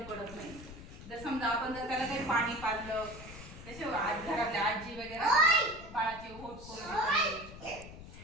पडत नाही. जर समजा आपण जर त्याला काही पाणी पाजलं, तसे घरातल्या आजी वगैरे बाळाचे होट करून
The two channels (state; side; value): noise; left; rumble, 14 dB below the sound